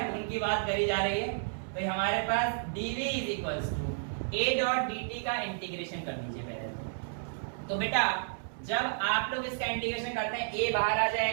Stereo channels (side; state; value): left; silent; 57 dB below the other